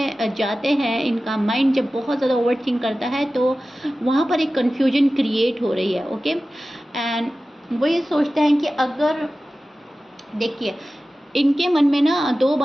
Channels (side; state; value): both; normal; correlation 0.95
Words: जाते हैं, इनका माइंड जब बहुत ज़्यादा ओवर थिंक करता है, तो वहाँ पर एक कन्फ्यूजन क्रिएट हो रही है। ओके, एंड वो ये सोचते हैं कि अगर, देखिए, इनके मन में ना दो